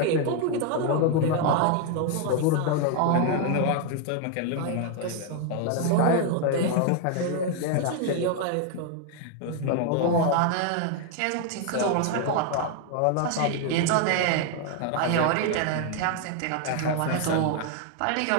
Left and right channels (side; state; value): both; different; correlation 0.00